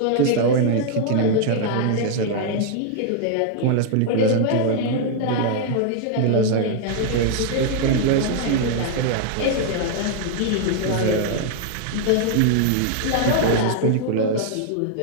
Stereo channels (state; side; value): different; both; correlation 0.00